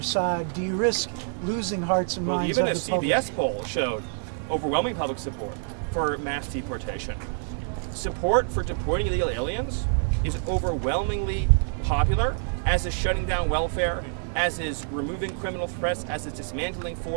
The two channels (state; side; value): silent; left; 60 dB below the other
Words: side? Do you risk losing hearts and Well, minds even of a the public? CBS poll showed overwhelming public support for mass deportation. Support for deporting illegal aliens is overwhelmingly popular, as is shutting down welfare, as is removing criminal threats, as is dismantling